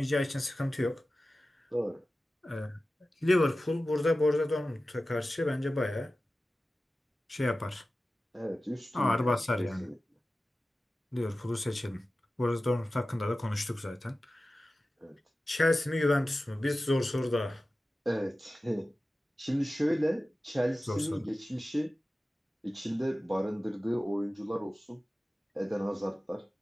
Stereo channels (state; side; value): normal; both; correlation 0.95